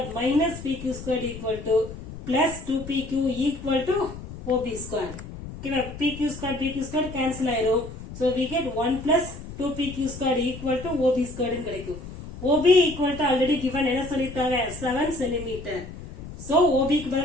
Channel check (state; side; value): noise; left; rumble, 12 dB below the sound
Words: minus PQ square equal to plus 2PQ equal to OB square. ஓகேவா? PQ square cancel ஆயிரும். So we get 1 plus 2PQ square equal to OB square கிடைக்கும். OB equal to already given என்ன சொல்லிருக்காங்க? 7 centimeter. So OB க்கு